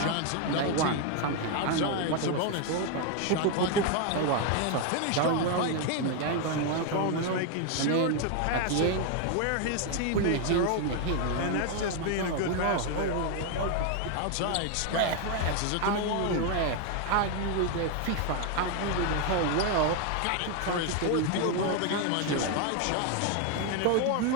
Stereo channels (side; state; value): both; different; correlation 0.01